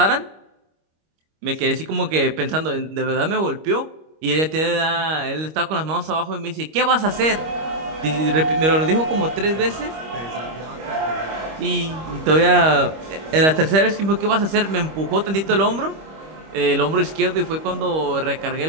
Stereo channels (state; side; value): late; left; 25 ms